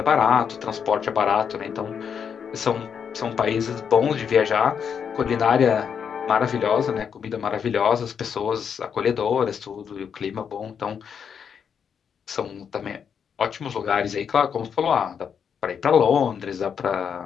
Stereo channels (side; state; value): right; quieter; 7.2 dB